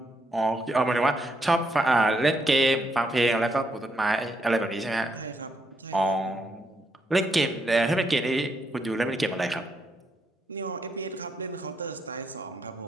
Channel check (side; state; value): both; normal; correlation 0.78